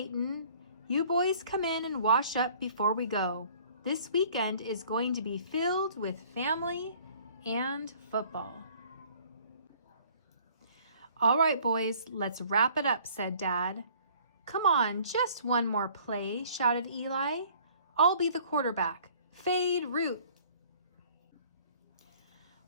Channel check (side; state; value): both; inverted; correlation -0.54